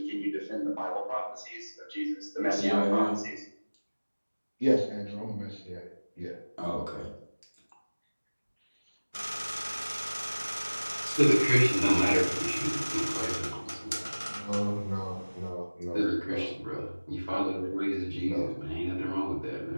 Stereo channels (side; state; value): both; inverted; correlation -1.00